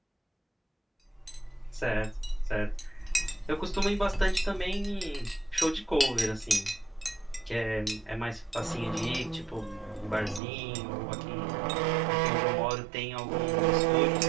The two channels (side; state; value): left; drops out; at 10.4 s